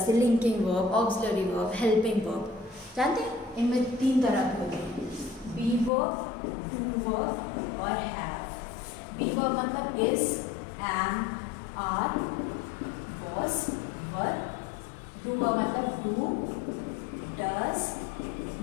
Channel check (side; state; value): right; drops out; at 5.9 s